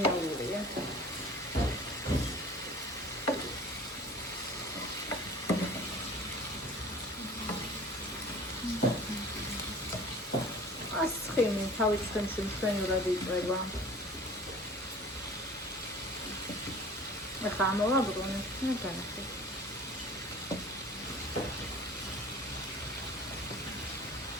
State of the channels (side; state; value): both; normal; correlation 0.44